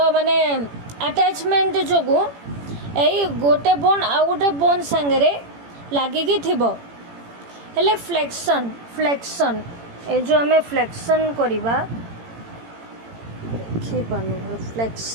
माने अटैचमेंट जोगु एई गोटे बोन आउ गोटे बोन संगे लागिकी थिबो हेले फ्लेक्शन ए जो हमें फ्लेक्शन करिबा देखि पानु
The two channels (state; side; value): late; left; 18 ms